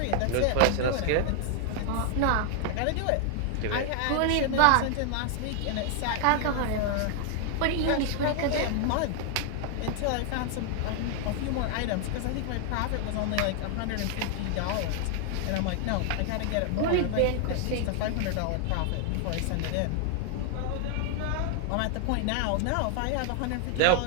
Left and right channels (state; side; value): different; both; correlation 0.00